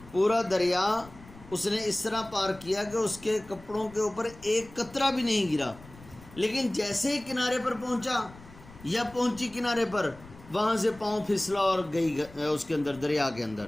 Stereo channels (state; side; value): noise; left; rumble, 20 dB below the sound